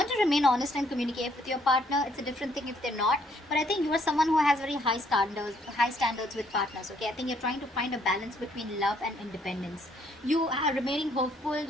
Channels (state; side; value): normal; both; correlation 0.67